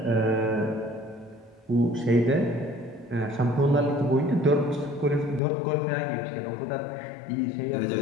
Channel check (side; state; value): right; drops out; at 5.4 s